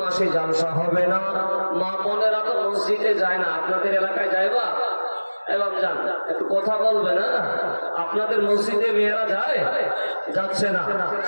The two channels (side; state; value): both; inverted; correlation -1.00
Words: মাসে জালসা হবে না। মা বোনেরা তো মসজিদে যায় না, আপনাদের এলাকায় যাইবা? এবার যান, একটু কথা বলবে না? আপনাদের মসজিদে মেয়েরা যায়? যাচ্ছে না,